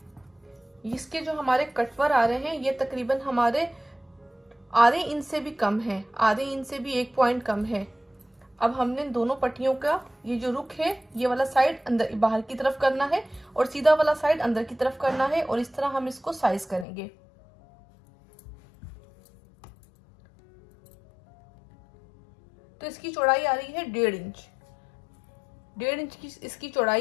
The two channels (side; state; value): right; drops out; at 16.9 s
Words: इसके जो हमारे कटवर आ रहे हैं ये तकरीबन हमारे आधे इंच से भी कम है, आधे इंच से भी 1 पॉइंट कम है। अब हमने दोनों पट्टियों का ये जो रुख है ये वाला साइड अंदर बाहर की तरफ करना है और सीधा वाला साइड अंदर की तरफ करना है और इस तरह हम इसको साइज करेंगे। तो इसकी चौड़ाई आ रही है 1.5 इंच। 1.5 इंच की इसकी